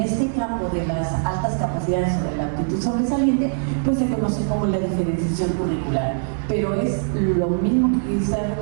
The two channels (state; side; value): silent; left; digital silence